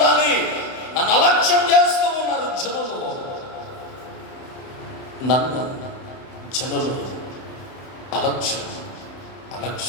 నన్ను అలక్ష్యం చేస్తూ ఉన్నారు జనులు. నన్ను జనులు అలక్ష్యం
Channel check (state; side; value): late; right; 31 ms